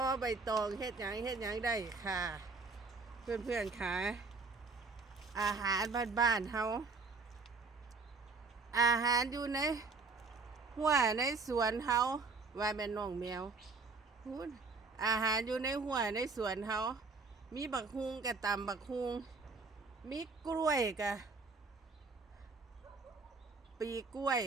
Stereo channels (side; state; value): left; quieter; 4.2 dB